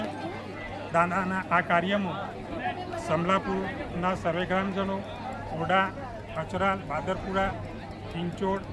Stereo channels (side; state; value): both; identical; correlation 1.00